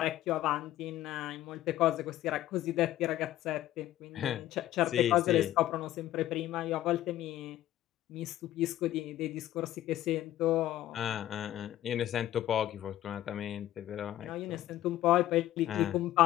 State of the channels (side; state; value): right; quieter; 13.8 dB